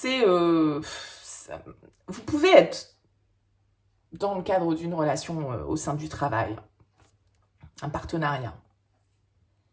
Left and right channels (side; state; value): both; identical; correlation 1.00